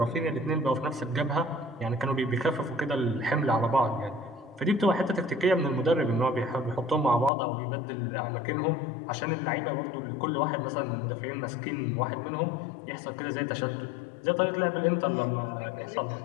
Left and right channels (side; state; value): right; drops out; at 7.3 s